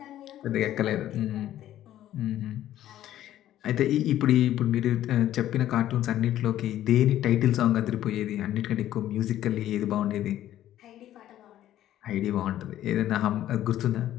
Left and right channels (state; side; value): quieter; right; 12.7 dB